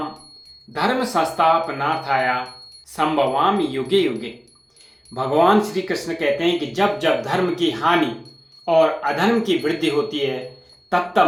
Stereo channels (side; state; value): both; identical; correlation 1.00